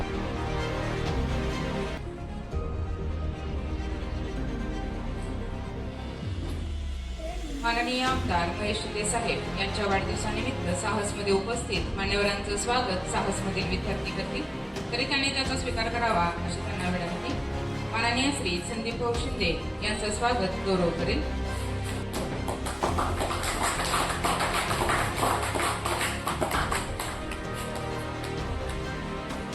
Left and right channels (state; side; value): identical; both; correlation 1.00